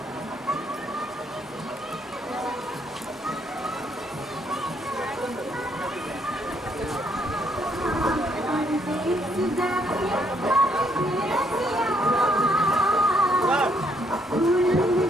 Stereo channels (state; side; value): normal; both; correlation 0.71